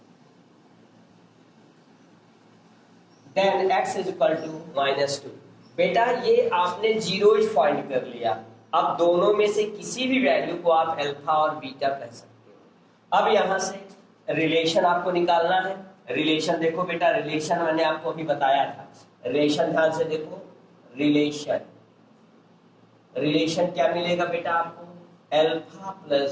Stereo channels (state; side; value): identical; both; correlation 1.00